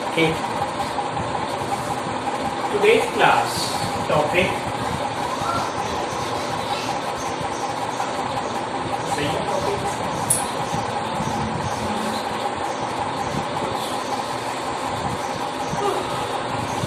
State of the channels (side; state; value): both; identical; correlation 1.00